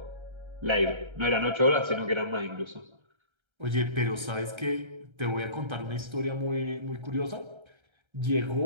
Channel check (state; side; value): late; left; 1.3 ms